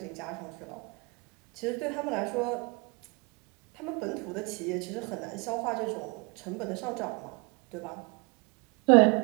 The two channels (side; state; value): left; quieter; 30.2 dB